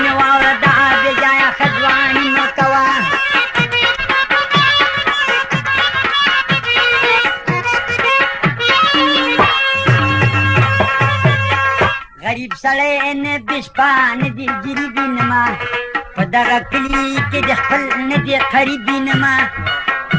مې واوره دا بې ځایه ښځواني مه کوه غریب سړی نه د شپه نه د ګریبي نما په دغه کلي کې د خپل نه د قریبي نما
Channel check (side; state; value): both; identical; correlation 1.00